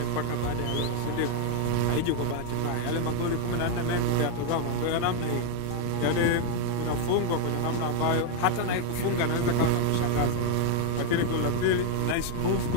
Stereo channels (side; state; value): both; different; correlation 0.00